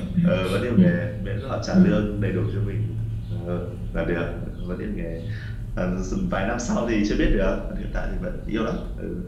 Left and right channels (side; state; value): both; identical; correlation 1.00